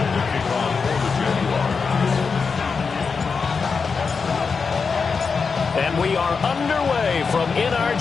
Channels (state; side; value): quieter; right; 5.2 dB